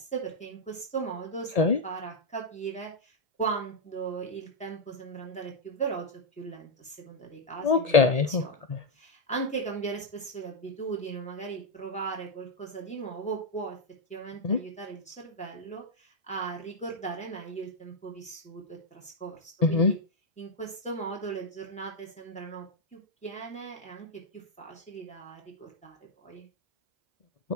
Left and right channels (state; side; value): normal; both; correlation 0.00